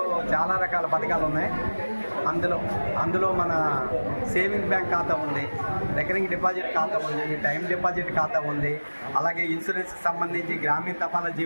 చాలా రకాల పథకాలు ఉన్నాయి. అందులో మన సేవింగ్ బ్యాంక్ ఖాతా ఉంది, రికరింగ్ డిపాజిట్ ఖాతా ఉంది, టైం డిపాజిట్ ఖాతా ఉంది, అలాగే ఇన్సూరెన్స్కి సంబంధించి గ్రామీణ తపాలా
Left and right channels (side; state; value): both; inverted; correlation -1.00